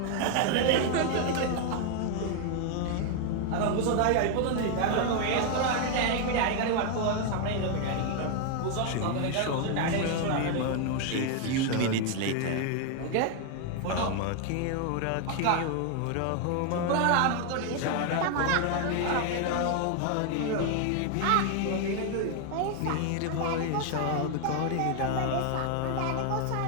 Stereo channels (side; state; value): both; different; correlation 0.00